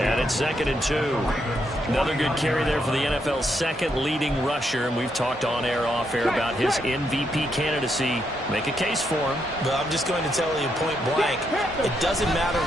and it's 2nd and 2. Another good carry there for the NFL's second leading rusher, and we've talked on air, off air about his MVP candidacy. Make a case for him. Well, I'm just going to tell you point blank, it doesn't matter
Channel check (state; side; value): normal; both; correlation 0.78